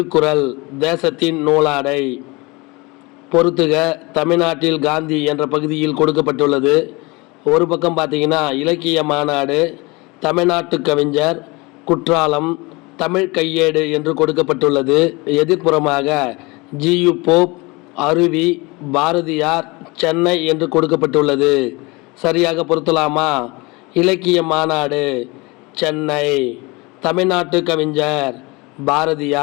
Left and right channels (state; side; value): quieter; right; 25.2 dB